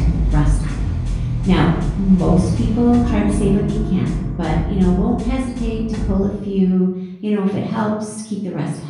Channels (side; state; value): both; identical; correlation 1.00